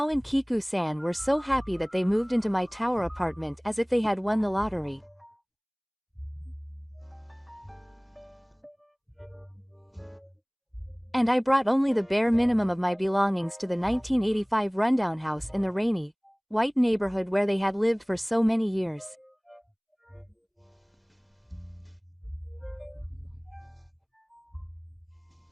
and Kiku-san were so happy that they moved into my tower apartment as if they had won the lottery. And I brought only the bare minimum of my belongings to the 1985 rundown house in the rainy, white neighborhood where they had lived for so many years.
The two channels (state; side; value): identical; both; correlation 1.00